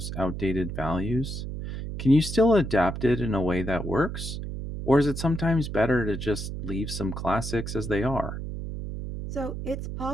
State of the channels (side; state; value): right; noise; hum, 6 dB below the sound